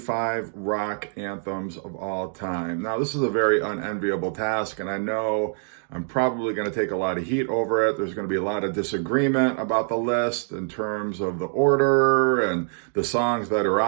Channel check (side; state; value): left; silent; digital silence